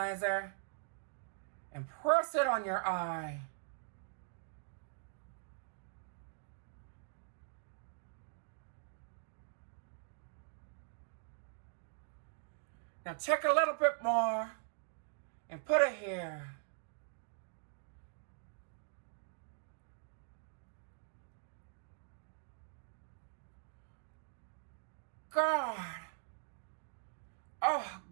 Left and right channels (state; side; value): silent; left; digital silence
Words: and press it on your eye. Now take a little bit more and put it here. God. Oh,